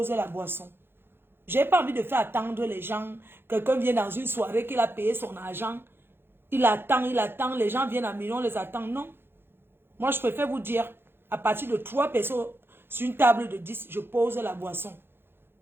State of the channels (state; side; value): late; left; 0.11 ms